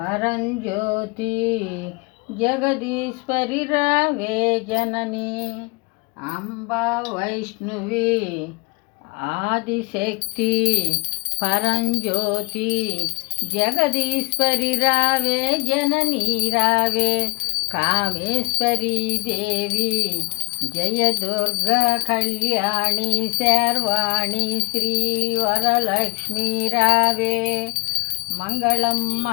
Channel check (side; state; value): right; quieter; 26.0 dB